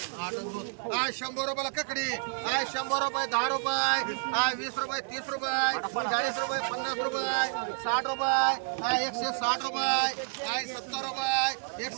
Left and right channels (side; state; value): left; silent; 58 dB below the other